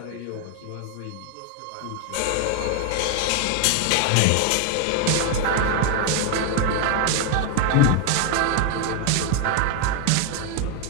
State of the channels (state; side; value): different; both; correlation 0.01